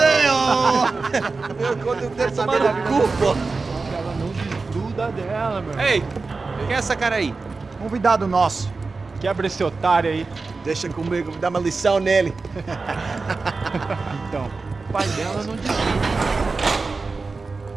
ó. Meu conta, eu quero tomar no cu, pô. Ela não desgruda dela, meu. Ei, quem é essa cara aí? Convidado nosso. Quebra esse otário aí. Deixa comigo, vou dar uma lição nele. Então, o pai dela não desgruda.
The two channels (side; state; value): left; quieter; 4.0 dB